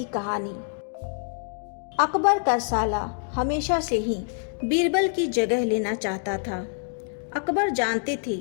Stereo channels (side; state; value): right; silent; digital silence